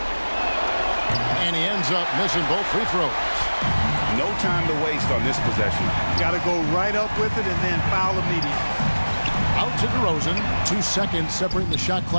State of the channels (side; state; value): both; inverted; correlation -1.00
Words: And he ends up missing both free throws. No time to waste on this possession. Got to go right up with it and then foul immediately. Out to DeRozan. 2 seconds separating the shot